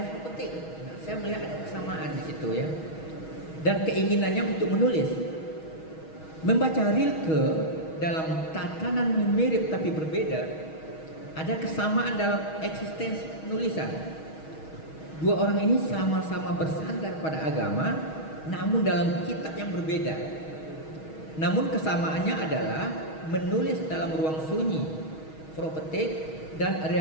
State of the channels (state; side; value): late; right; 6.3 ms